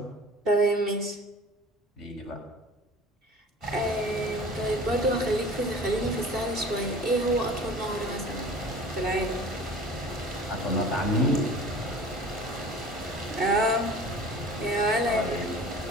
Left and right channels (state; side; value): normal; both; correlation 0.43